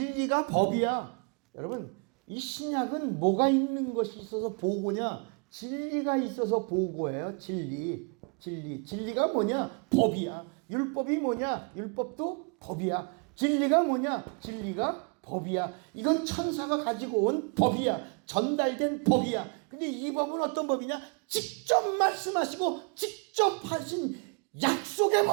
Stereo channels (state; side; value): quieter; left; 36.2 dB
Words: 법이야. 여러분 이 신약은 뭐가 있는 것이 있어서 보고냐? 진리가 있어서 보고예요. 진리가 뭐냐? 법이야. 율법이 뭐냐? 율법도 법이야. 진리가 뭐냐? 진리가 법이야. 이건 천사가 가지고 온 법이야. 전달된 법이야. 근데 이 법은 어떤 법이냐? 직접 말씀하시고 직접 하신 약속의